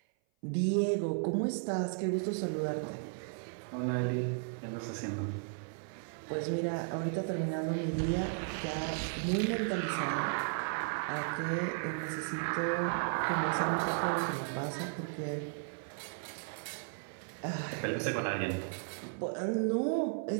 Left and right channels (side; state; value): left; silent; 54 dB below the other